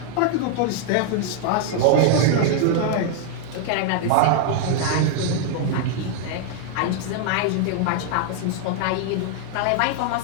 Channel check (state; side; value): different; both; correlation 0.00